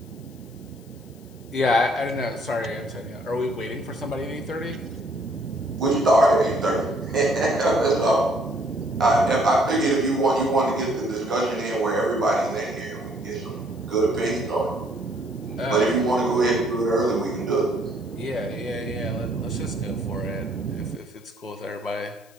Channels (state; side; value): noise; left; hiss, 28 dB below the sound